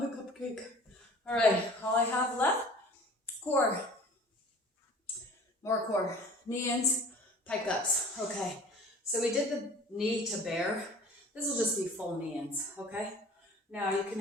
cupcake. All right, all I have left, core. More core. Knee-ins, pike-ups. Okay, so we did the knee to bear. This will just be full knee-ins, okay? Now you can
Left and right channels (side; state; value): both; normal; correlation 0.45